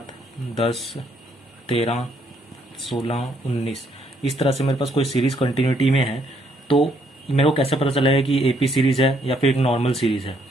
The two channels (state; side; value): normal; both; correlation 0.70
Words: 10, 13, 16, 19, इस तरह से मेरे पास कोई सीरीज कंटिन्यूटी में है, तो मेरे को कैसे पता चलेगा कि एपी सीरीज है या फिर एक नॉर्मल सीरीज है।